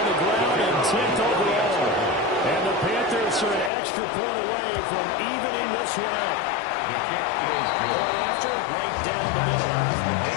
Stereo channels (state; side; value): drops out; right; at 3.7 s